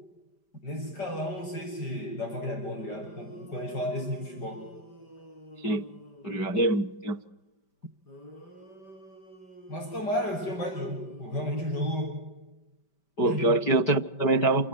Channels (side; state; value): right; late; 5.1 ms